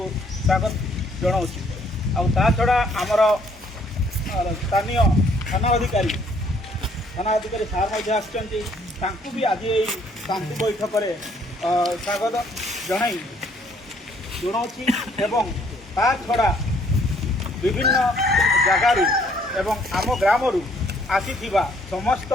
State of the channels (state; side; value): normal; both; correlation 0.64